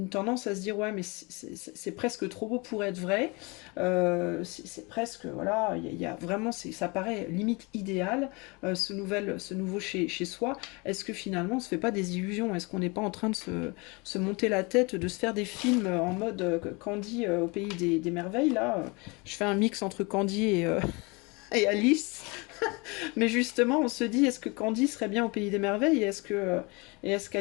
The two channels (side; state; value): right; quieter; 27.8 dB